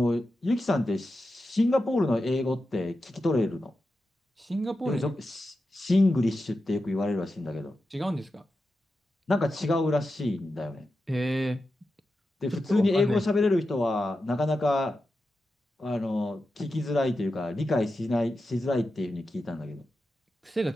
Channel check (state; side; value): normal; both; correlation 0.90